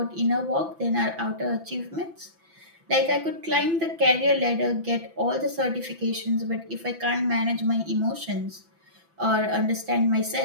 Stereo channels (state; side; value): late; left; 6.0 ms